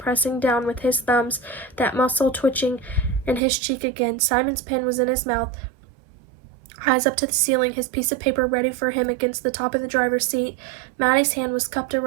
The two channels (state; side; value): drops out; left; at 3.4 s